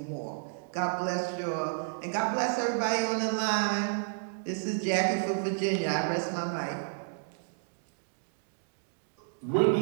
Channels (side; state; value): left; silent; digital silence